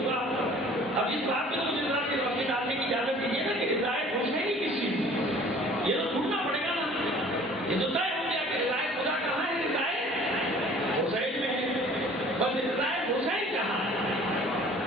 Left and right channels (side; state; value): both; normal; correlation 0.50